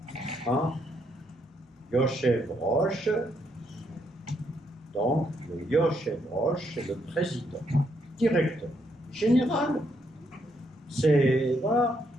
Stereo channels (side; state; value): both; normal; correlation 0.75